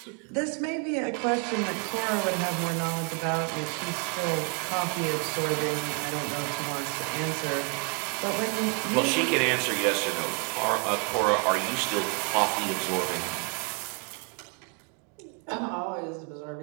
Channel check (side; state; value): left; quieter; 35.8 dB